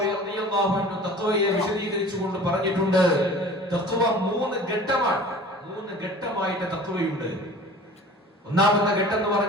റളിയല്ലാഹു അൻഹു തഖ്വയെ വിശദീകരിച്ചുകൊണ്ട് പറഞ്ഞിട്ടുണ്ട്, തഖ്വ 3 ഘട്ടമാണ്. 3 ഘട്ടമായിട്ട് തഖ്വയുണ്ട്. ഒന്നാമത്തെ ഘട്ടം എന്ന്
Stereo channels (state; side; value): normal; both; correlation 0.43